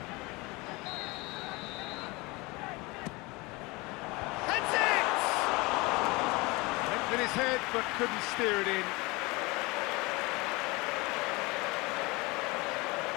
In his head, but couldn't steer it in.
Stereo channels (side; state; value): right; quieter; 24.6 dB